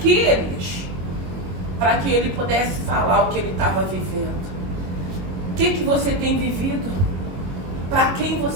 Elias? Para que ele pudesse falar o que ele estava vivendo. O que você tem vivido? Para quem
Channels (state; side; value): late; left; 22 ms